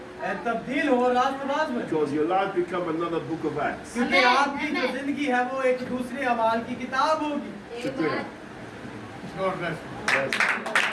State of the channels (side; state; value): both; identical; correlation 1.00